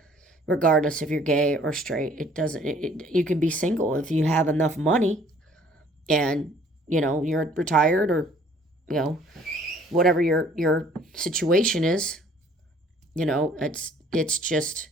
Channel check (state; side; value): normal; both; correlation 0.57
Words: Regardless if you're gay or straight, you can be single if you have enough money and, you're retired or, whatever your situation is, it's